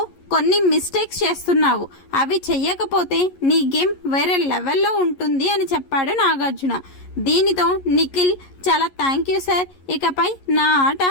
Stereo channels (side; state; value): right; late; 11 ms